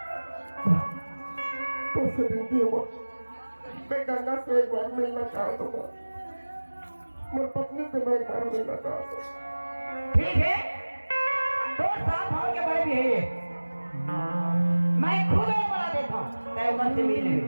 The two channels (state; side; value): inverted; both; correlation -1.00